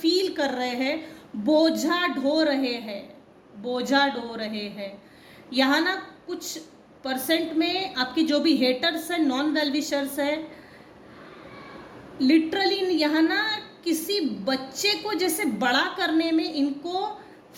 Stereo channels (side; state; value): both; identical; correlation 1.00